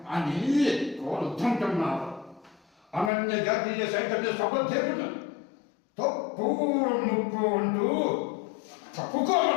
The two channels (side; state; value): right; drops out; at 3.1 s